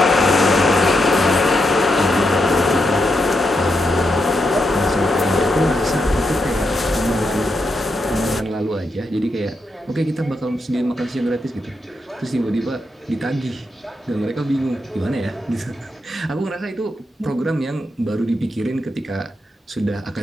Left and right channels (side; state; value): both; normal; correlation 0.83